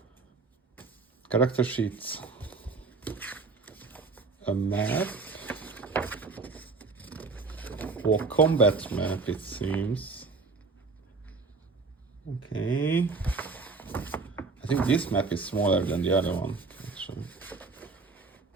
character sheets, a map, or combat map, it seems. Okay. I think this map is smaller than the other one, actually.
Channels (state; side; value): quieter; left; 4.2 dB